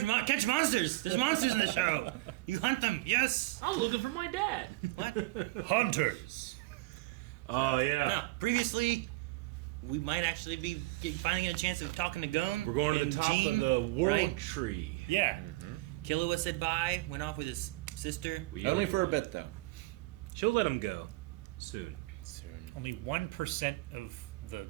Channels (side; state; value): left; quieter; 20.4 dB